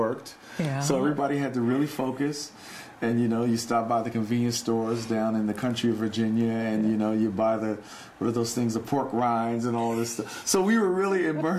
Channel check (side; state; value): both; identical; correlation 1.00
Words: Yeah. So everybody had to really focus. And, you know, you stop by the convenience stores down in the country of Virginia, and, you know, you buy what are those things, the pork rinds and all this stuff. So we were really